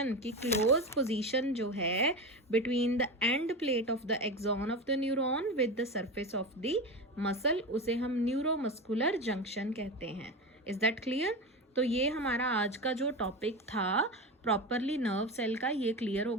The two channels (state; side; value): normal; both; correlation 0.22